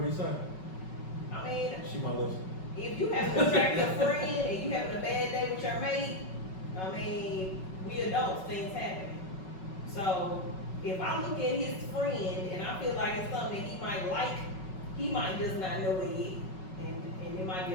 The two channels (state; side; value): late; right; 5.3 ms